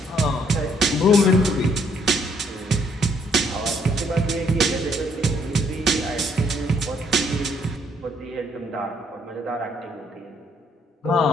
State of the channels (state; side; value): normal; both; correlation 0.68